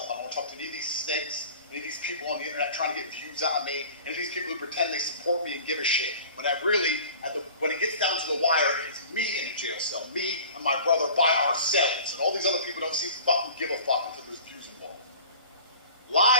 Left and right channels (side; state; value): both; inverted; correlation -0.43